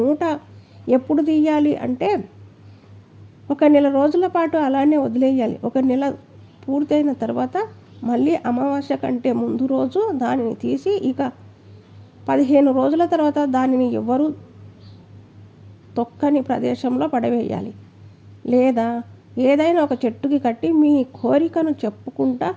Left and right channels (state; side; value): identical; both; correlation 1.00